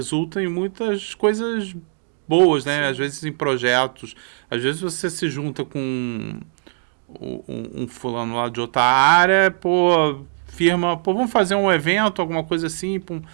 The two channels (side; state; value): left; silent; digital silence